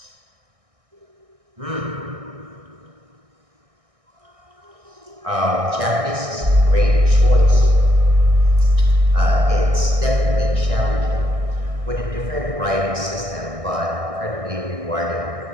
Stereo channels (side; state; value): left; late; 1.6 ms